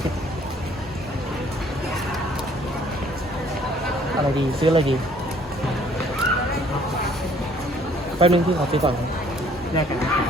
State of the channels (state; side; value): normal; both; correlation 0.59